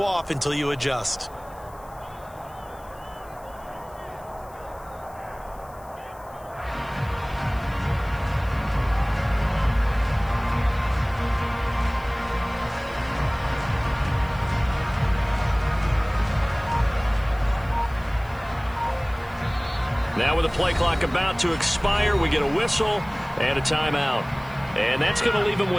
off until you adjust. Now with the play clock about to expire, we get a whistle and a timeout. And that's going to leave him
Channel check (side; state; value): left; noise; hiss, 26 dB below the sound